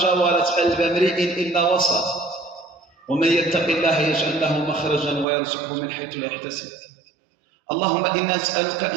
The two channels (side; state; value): left; drops out; at 5.2 s